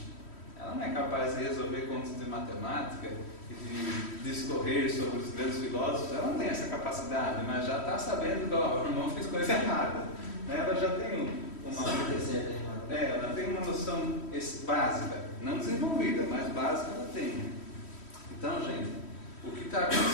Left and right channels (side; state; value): right; late; 3.1 ms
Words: Ela não é capaz de resolver contas de matemática e de discorrer sobre os grandes filósofos. Ela não tem essa capacidade, mas já está sabendo que o irmão fez coisa errada. Ela já tem ela tem uma noção básica, não desenvolvida, mas básica ela tem. Então, gente, o que está